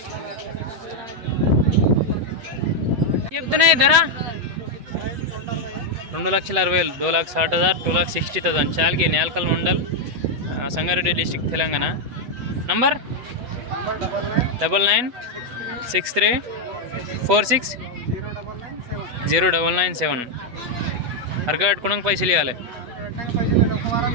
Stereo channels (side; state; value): left; late; 8.2 ms